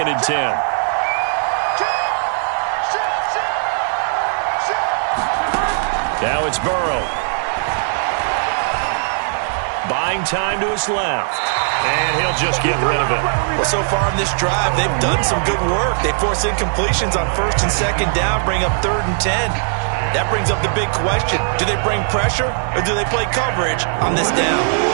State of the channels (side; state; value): left; silent; digital silence